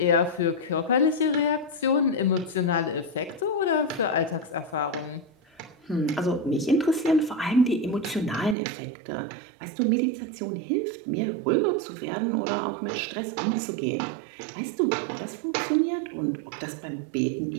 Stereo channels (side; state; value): left; drops out; at 8.6 s